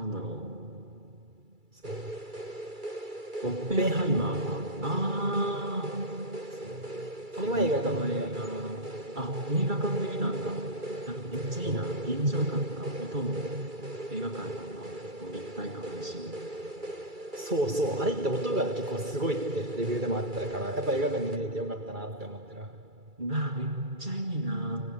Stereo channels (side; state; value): left; late; 2.3 ms